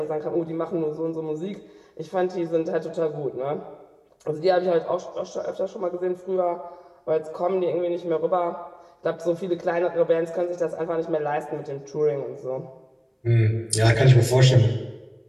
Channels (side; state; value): both; identical; correlation 1.00